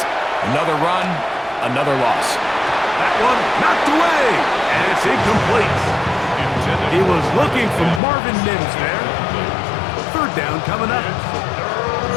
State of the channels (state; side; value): drops out; right; at 8.0 s